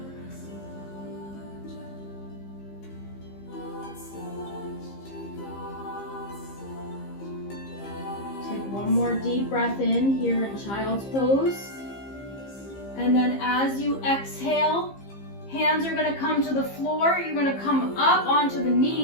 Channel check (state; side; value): late; right; 15 ms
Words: One more deep breath in here in child's pose. And then as you exhale, hands are going to come to the floor. You're going to come up onto the